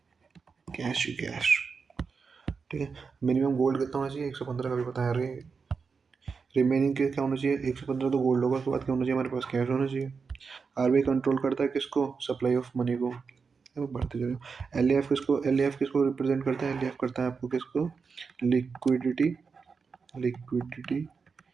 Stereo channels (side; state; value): left; quieter; 5.2 dB